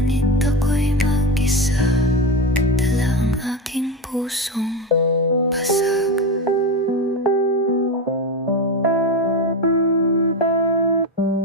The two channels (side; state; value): both; normal; correlation 0.18